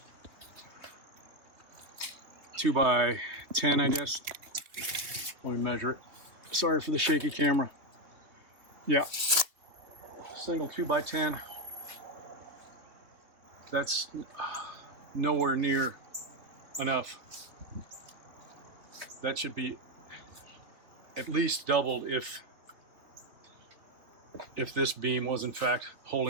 2x10, I guess. Let me measure it. Sorry for the shaky camera. Yeah, single 2x10. That's nowhere near enough. That should be at least doubled if this beam was in fact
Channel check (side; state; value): left; late; 3.0 ms